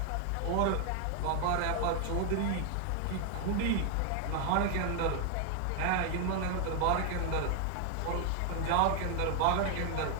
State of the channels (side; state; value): both; different; correlation 0.00